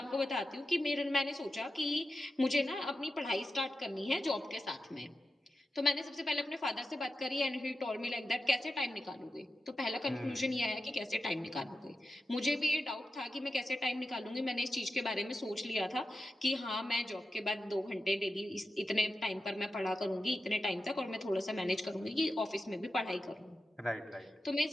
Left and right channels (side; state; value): both; normal; correlation 0.90